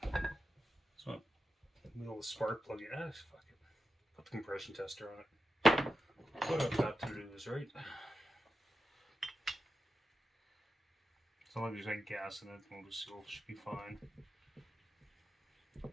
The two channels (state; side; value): normal; both; correlation 0.88